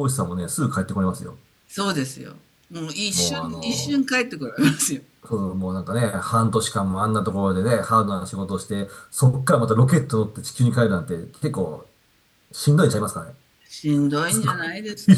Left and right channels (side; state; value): both; identical; correlation 1.00